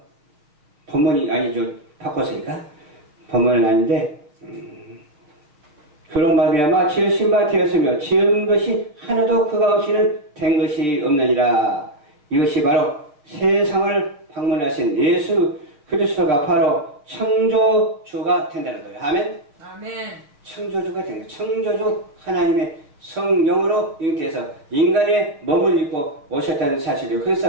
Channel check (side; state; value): left; late; 6.7 ms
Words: 본문이 아니죠. 바꿨으니까. 본문은 아닌데 그로 말미암아 지으신 바 되었으며 지은 것이 하나도 그가 없이는 된 것이 없느니라. 이것이 바로 세상을 방문하신 예수 그리스도가 바로 창조주가 된다는 거예요. 아멘? 아멘. 창조주가 된 거예요. 창조주 하나님의 성령으로 잉태해서 인간의 몸을 입고 오셨다는 사실이에요.